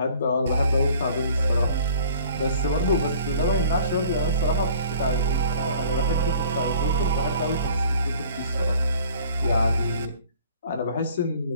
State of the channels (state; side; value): inverted; both; correlation -0.52